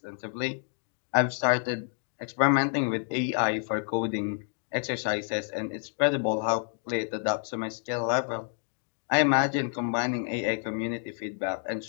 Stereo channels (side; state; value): right; silent; 59 dB below the other